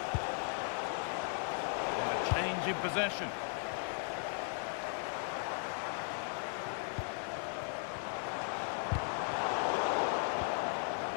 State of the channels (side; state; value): right; silent; 53 dB below the other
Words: And a change in possession.